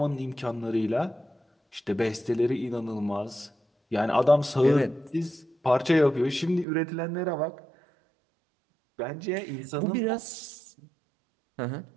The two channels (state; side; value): drops out; left; at 6.7 s